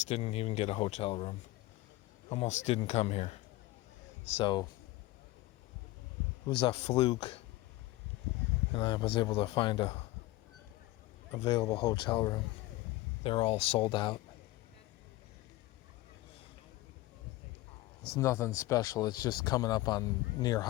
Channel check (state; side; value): quieter; right; 18.6 dB